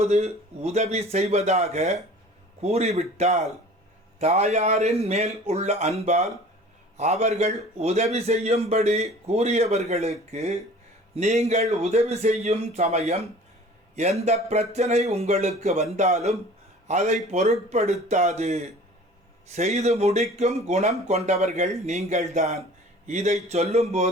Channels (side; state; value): both; normal; correlation 0.45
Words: உதவி செய்வதாக கூறிவிட்டால் தாயாரின் மேல் உள்ள அன்பால் அவர்கள் உதவி செய்யும்படி கூறியவர்களுக்கு நீங்கள் உதவி செய்யும் சமயம் எந்த பிரச்சனை உங்களுக்கு வந்தாலும் அதை பொருட்படுத்தாது செய்து முடிக்கும் குணம் கொண்டவர்கள் நீங்கள்தான். இதை